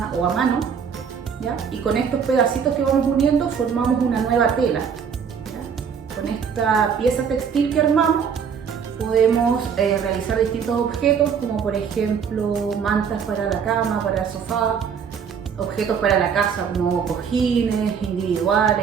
o a mano. ¿Ya? Y con estos pedacitos que vamos uniendo formamos una nueva tela. ¿Ya? Con esta pieza textil que armamos podemos realizar distintos objetos, como por ejemplo mantas para la cama, para el sofá, objetos para la casa como cojines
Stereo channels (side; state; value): left; quieter; 6.9 dB